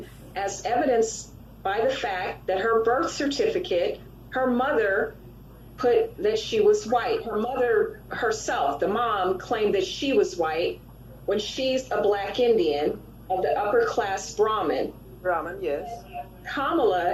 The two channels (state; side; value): identical; both; correlation 1.00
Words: as evidenced by the fact that her birth certificate, her mother put that she was white. Her mother herself, the mom, claimed that she was white when she's a black Indian of the upper class Brahmin. Brahmin, yes.